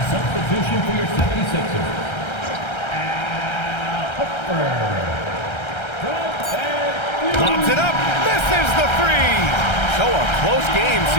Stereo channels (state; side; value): late; right; 1.3 ms